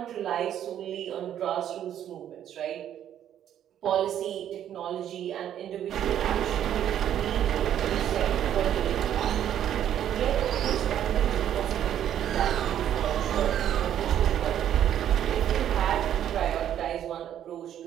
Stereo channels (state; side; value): quieter; left; 10.5 dB